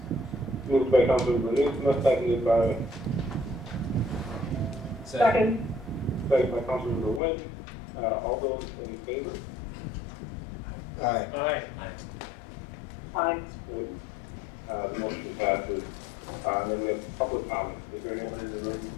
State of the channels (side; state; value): right; drops out; at 7.2 s